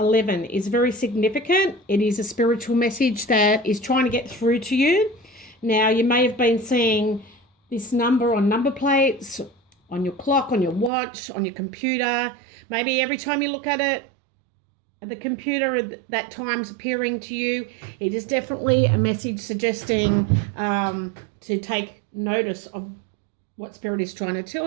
is very significant. It is a spiritual message that is trying to get through to you. Now, you may have been seeing this number on number plates, on your clock, on your watch, on your computer. Maybe every time you look at it, the computer that time's appearing to you. It is definitely a message suggesting to take notice of what Spirit is trying to tell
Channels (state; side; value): drops out; left; at 10.9 s